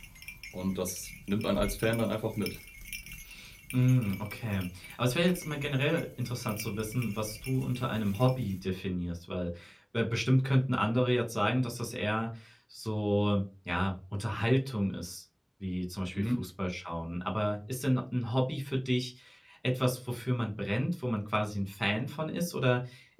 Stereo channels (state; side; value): identical; both; correlation 1.00